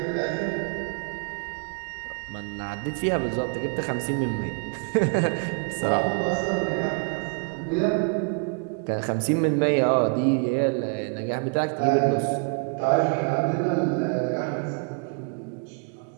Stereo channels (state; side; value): quieter; left; 38.8 dB